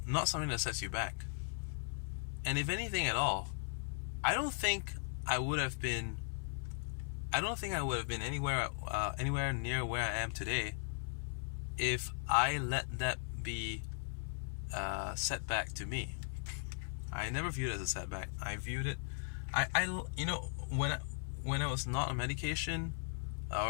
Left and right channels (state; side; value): silent; right; 52 dB below the other